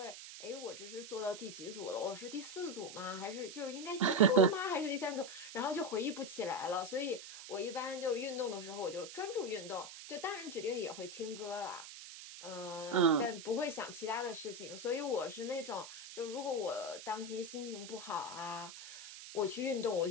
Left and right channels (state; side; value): noise; right; hiss, 12 dB below the sound